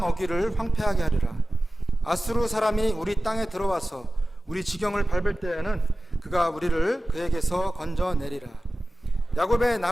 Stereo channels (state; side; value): normal; both; correlation 0.96